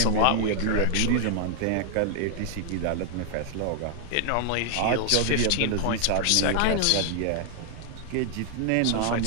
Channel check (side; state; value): both; different; correlation 0.00